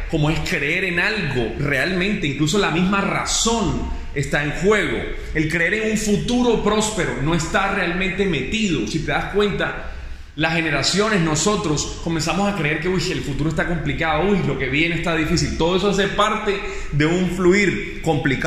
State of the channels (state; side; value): identical; both; correlation 1.00